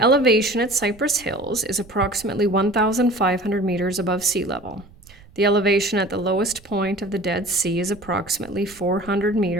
elevation at Cypress Hills is approximately 1,500 meters above sea level. The elevation at the lowest point of the Dead Sea is approximately 400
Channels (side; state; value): right; noise; rumble, 24 dB below the sound